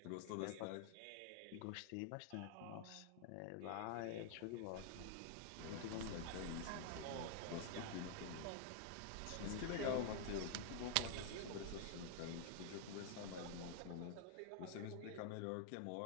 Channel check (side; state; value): both; different; correlation 0.00